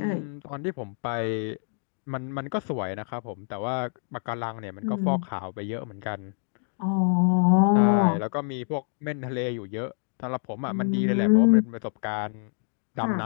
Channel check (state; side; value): silent; right; digital silence